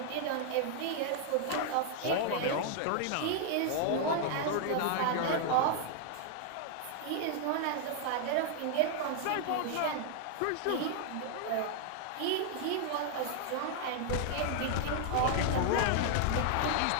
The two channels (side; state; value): both; different; correlation 0.00